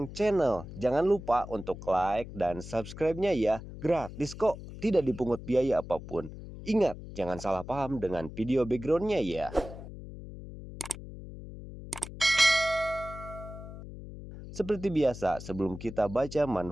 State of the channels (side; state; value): left; noise; hum, 12 dB below the sound